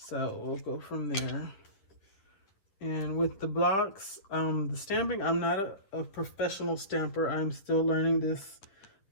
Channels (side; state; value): right; late; 9.9 ms